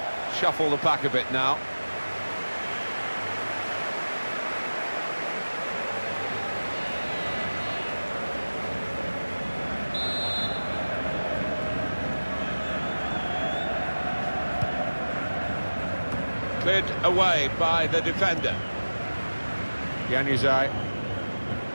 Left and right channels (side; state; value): both; inverted; correlation -1.00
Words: shuffle the pack a bit now. Cleared away by the defender. Januzaj.